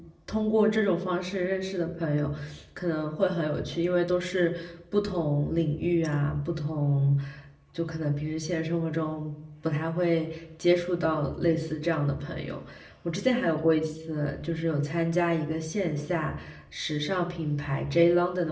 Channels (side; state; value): both; identical; correlation 1.00